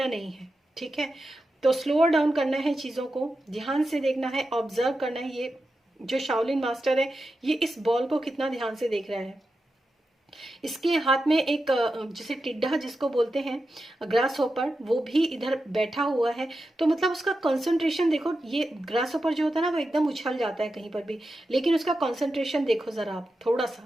नहीं है। ठीक है, तो स्लोअर डाउन करना है, चीजों को ध्यान से देखना है, ऑब्जर्व करना है। ये जो शाओलिन मास्टर है, ये इस बॉल को कितना ध्यान से देख रहा है। इसके हाथ में एक जैसे टिड्डा जिसको बोलते हैं, ग्रास होपर, वो भी इधर बैठा हुआ है। तो मतलब उसका कंसंट्रेशन देखो, ये ग्रास होपर जो होता है ना वो एकदम उछल जाता है कहीं पर भी, लेकिन उसका कंसंट्रेशन देखो जरा आप थोड़ा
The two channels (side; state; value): both; normal; correlation 0.90